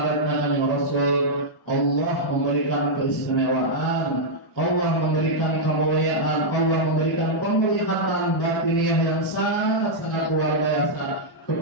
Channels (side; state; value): both; normal; correlation -0.06